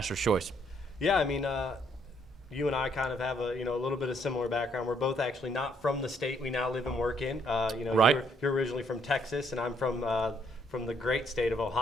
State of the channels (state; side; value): normal; both; correlation 0.69